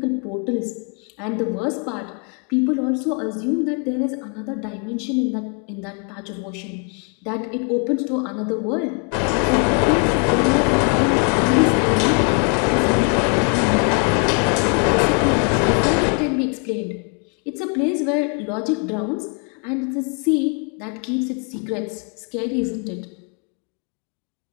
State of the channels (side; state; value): right; quieter; 38.5 dB